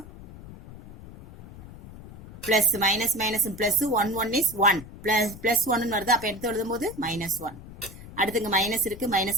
Plus minus minus plus 1 1 is 1 plus 1 வருது, அப்ப எடுத்து எழுதும் போது -1. அடுத்து இங்க மைனஸ் இருக்கு,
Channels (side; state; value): left; noise; rumble, 16 dB below the sound